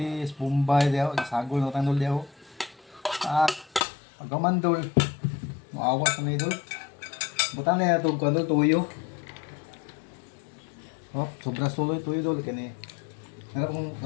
bumbay, diyaw. Sagol na tang, Dol, diyaw. Pagkaman, Dol. Maawas na Dol. Butan na itong Kwan, Dol. Tuyo. Oh, sobra suloy tuyo, Dol. Kini. Harap kong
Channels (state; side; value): drops out; right; at 3.9 s